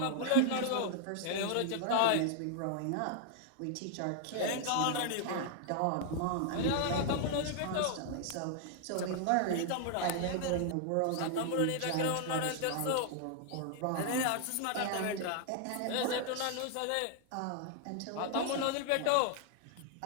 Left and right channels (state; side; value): different; both; correlation 0.00